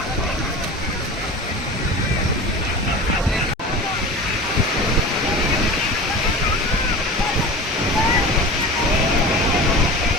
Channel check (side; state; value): both; normal; correlation 0.33